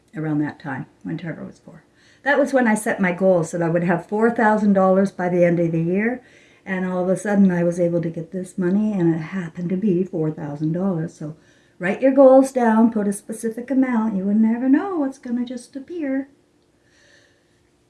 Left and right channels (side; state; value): both; identical; correlation 1.00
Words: around that time when Trevor was 4. That was when I set my goals that I would have $4,000 by the end of the year. And all of a sudden I was able to get this money, and it happened to be $4,000. So write your goals down, put a specific amount. You would never know what's going to just appear.